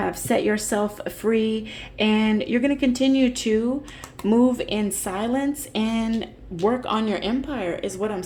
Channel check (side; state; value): both; identical; correlation 1.00